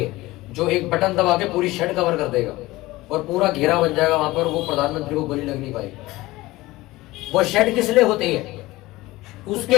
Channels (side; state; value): right; quieter; 19.1 dB